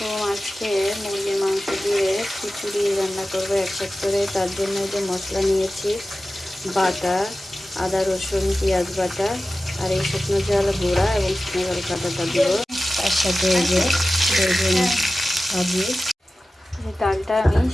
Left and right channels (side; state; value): both; normal; correlation 0.95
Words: আজকে মুরগির মাংস দিয়ে খিচুড়ি রান্না করবো একসাথে করে। তার জন্য যে মশলা নিয়েছি, বাটা, আদা রসুন পেঁয়াজ বাটা, আর এই শুকনো জল গুঁড়া এবং শুকনো জল কাটাটা দিব। তার সাথে এই যে বেগুন ভাজি। এই ডালটা আমি